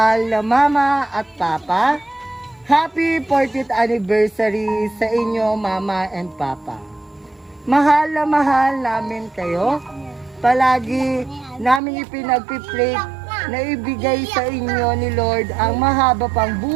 na mama at papa, happy 40th anniversary sa inyo, mama and papa. Mahal na mahal namin kayo. Palagi namin ipinagpipray na ibigay sa inyo ni Lord ang mahaba pang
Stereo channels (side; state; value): left; drops out; at 11.8 s